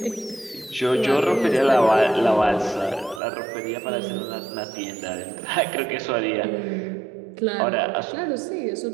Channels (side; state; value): left; drops out; at 3.2 s